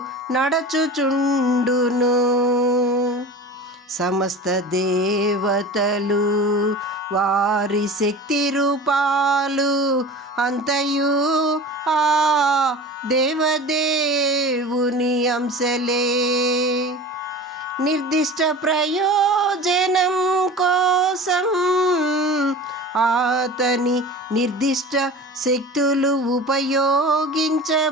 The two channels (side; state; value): both; normal; correlation 0.35